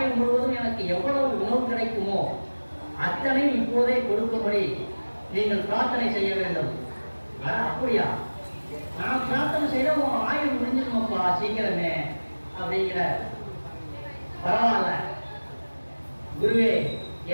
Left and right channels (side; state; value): both; inverted; correlation -1.00